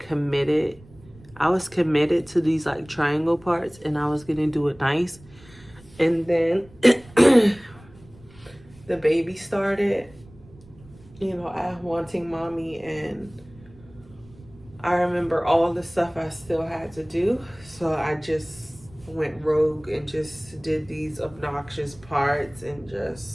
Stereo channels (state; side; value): noise; right; rumble, 24 dB below the sound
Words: I was committed to these like triangle parts and I was gonna do it nice. And then the baby started, I wanting mommy, and I remember all the stuff I still had to do. So I just went rogue and just did these obnoxious parts and